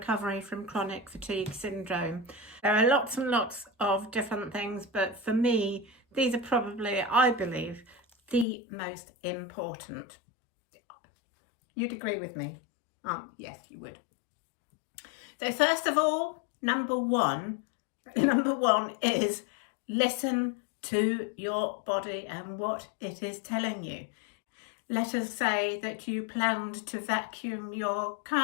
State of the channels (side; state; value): right; drops out; at 8.5 s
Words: from chronic fatigue syndrome. There are lots and lots of different things, but for me these are probably, I believe, the most important. You'd agree with me? Yes, you would. So first of all, number one is listen to your body and what it is telling you. Let us say that you planned to vacuum your